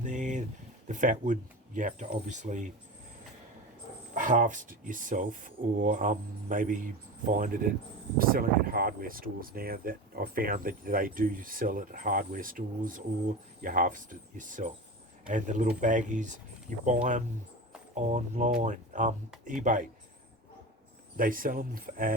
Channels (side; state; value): both; normal; correlation 0.28